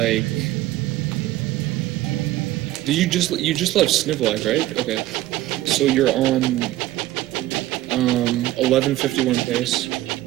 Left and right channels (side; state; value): left; quieter; 15.8 dB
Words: Did you just left Snivlac, right? Okay. So you're on 1151 pace.